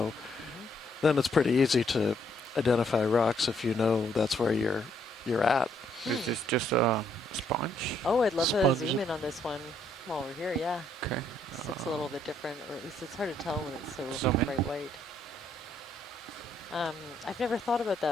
then it's pretty easy to identify rocks if you know that's where you're you're at. Is this just a sponge? Oh, I'd love to Sponge. zoom in on this one while we're here, yeah. Okay. This looks a little bit different, or at least it's hard to tell when it's so Zoom in. bright white. I've never thought about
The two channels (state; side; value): normal; both; correlation 0.70